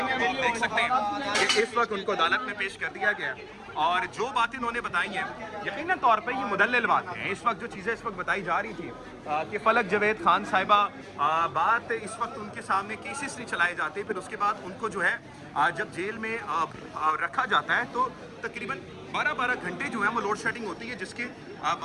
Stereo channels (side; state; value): both; identical; correlation 1.00